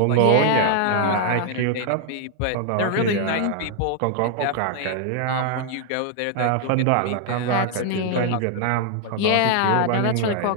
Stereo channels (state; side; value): different; both; correlation 0.00